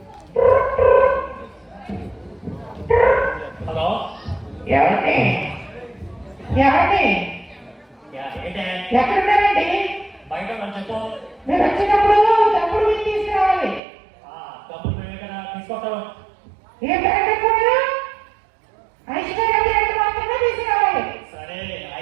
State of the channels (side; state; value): left; drops out; at 13.8 s